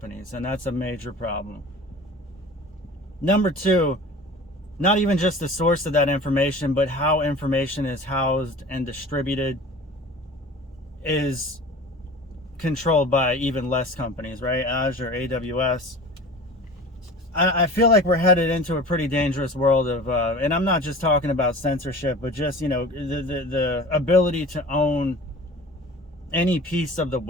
and that's a major problem. Number two, not even just the source of that information, but how information is housed and distributed is controlled by even less companies, right? Azure, AWS. I feel like we're headed into a pretty dangerous world of, and I'm not just talking about censorship, but just, the ability to own any piece of the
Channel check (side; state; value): both; normal; correlation 0.39